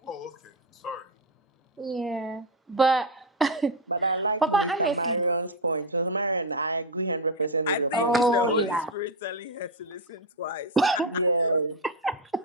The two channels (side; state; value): both; normal; correlation 0.07